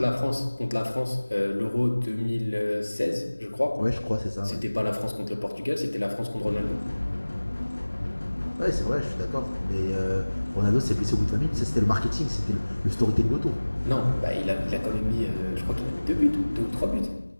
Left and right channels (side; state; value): both; inverted; correlation -1.00